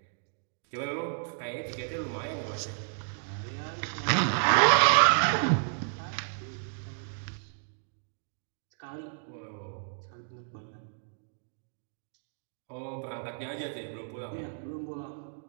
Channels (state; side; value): silent; left; digital silence